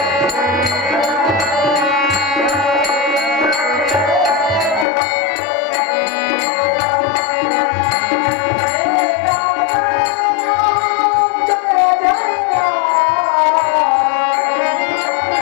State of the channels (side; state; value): right; drops out; at 4.9 s